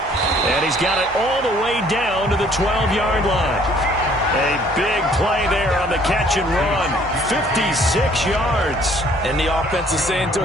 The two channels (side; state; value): both; normal; correlation 0.59